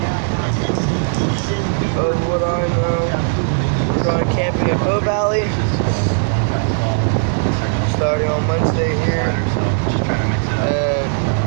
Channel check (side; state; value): left; silent; digital silence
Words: Of what I know, we're going camping at Bow Valley. Starting on Wednesday here